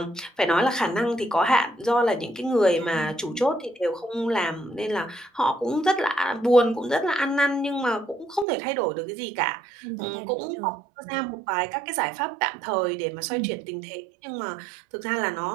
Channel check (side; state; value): left; drops out; at 8.5 s